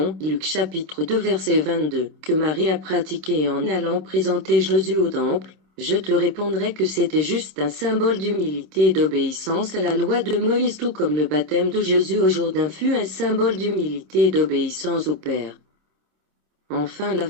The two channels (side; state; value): left; late; 27 ms